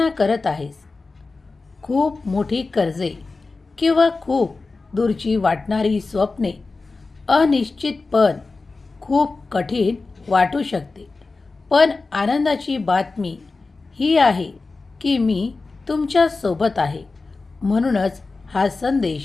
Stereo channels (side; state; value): right; quieter; 3.8 dB